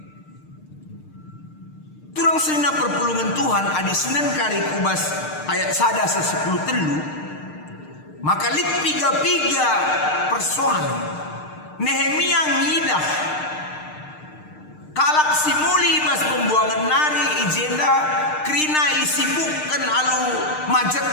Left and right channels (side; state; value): right; late; 6.6 ms